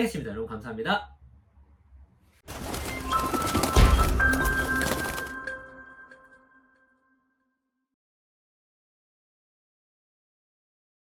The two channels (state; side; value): identical; both; correlation 1.00